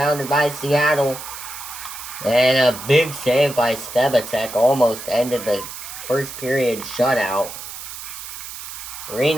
by Seattle. And a big save by Stebacek almost ended the first period shutout.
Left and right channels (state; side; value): noise; right; hiss, 11 dB below the sound